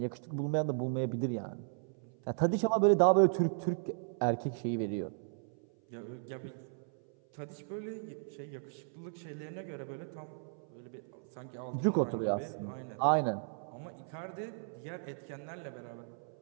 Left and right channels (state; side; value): silent; left; 54 dB below the other